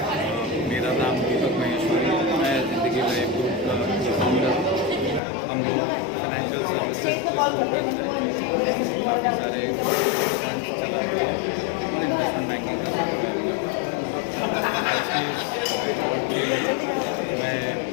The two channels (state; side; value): drops out; right; at 5.2 s